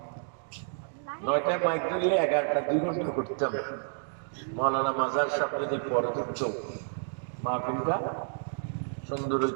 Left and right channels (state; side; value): silent; left; digital silence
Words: 9টায় মাইক ধরলে 11টা 2 ঘন্টা করতাম। মৌলানা মাজার সাহেব যদি পরে ধরত, মাহফিলটা সুন্দর